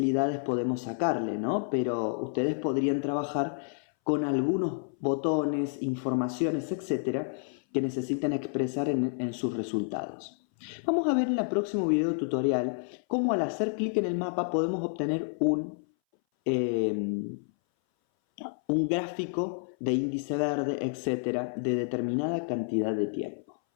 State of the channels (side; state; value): right; silent; 58 dB below the other